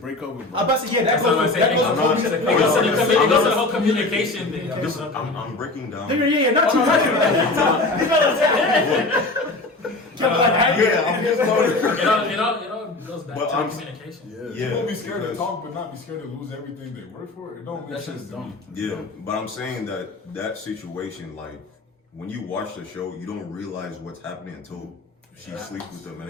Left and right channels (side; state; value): right; quieter; 3.0 dB